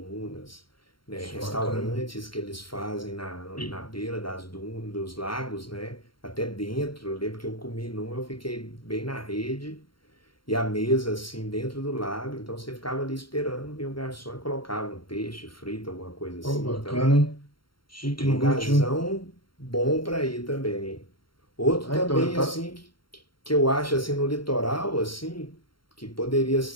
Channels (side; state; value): right; late; 0.73 ms